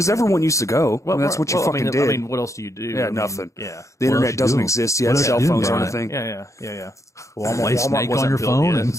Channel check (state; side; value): late; right; 0.15 ms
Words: everyone used to go. Well, that's what you well, fucking I did. mean, what else do you do? Yeah, I mean, nothing. Yeah. The What else internet you doesn't do? exist What yet. else Cell you do, phones man? aren't a thing. Yeah. Play Snake on wasn't your built phone yet, and